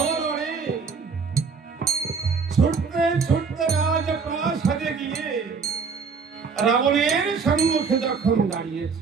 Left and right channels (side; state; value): left; quieter; 5.3 dB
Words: ছুটতে ছুটতে রাজ প্রাসাদে গিয়ে রাবণের সম্মুখে যখন